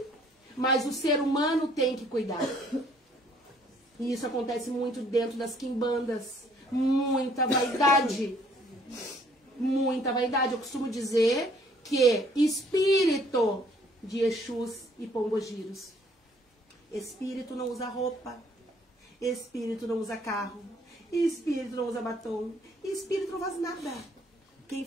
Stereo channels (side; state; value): both; normal; correlation 0.62